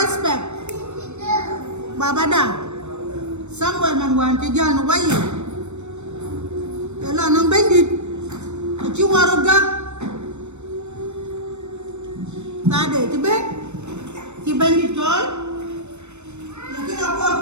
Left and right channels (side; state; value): left; late; 0.82 ms